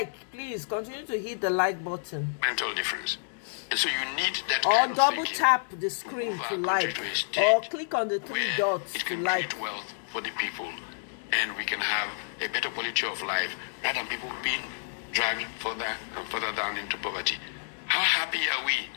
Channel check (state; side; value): silent; right; digital silence